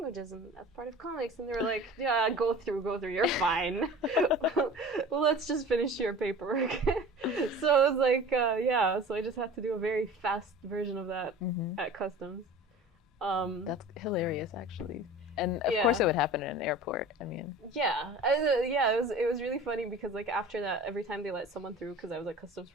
and that's part of comics. And they were like, yeah, go through, you're fine. Well, let's just finish your paperwork. So it was like, yeah, so I just had to do a very fast version of that at customs. That's hilarious, actually. And of course it would happen in an airport. I mean, it was really funny because like after that, every time they let someone through, because I was at customs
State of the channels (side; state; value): both; normal; correlation 0.40